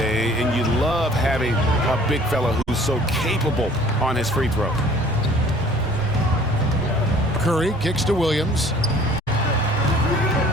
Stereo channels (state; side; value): normal; both; correlation 0.52